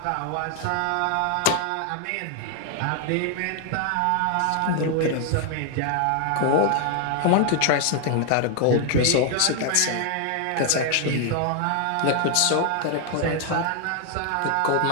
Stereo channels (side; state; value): both; different; correlation 0.00